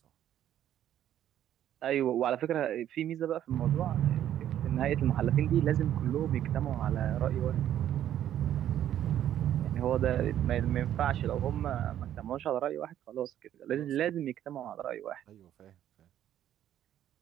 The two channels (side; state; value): left; quieter; 11.2 dB